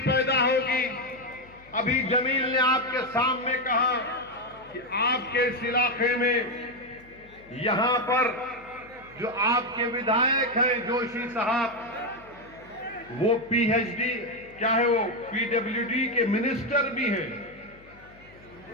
पैदा होगी। अभी जमील ने आपके सामने कहा कि आपके इस इलाके में यहां पर जो आपके विधायक हैं जोशी साहब, वो पीएचडी क्या है, वो पीडब्ल्यूडी के मिनिस्टर भी हैं,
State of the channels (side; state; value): left; noise; hum, 25 dB below the sound